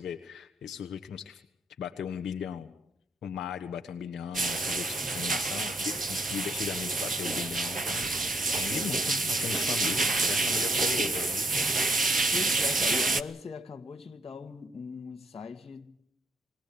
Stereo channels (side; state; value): both; normal; correlation 0.71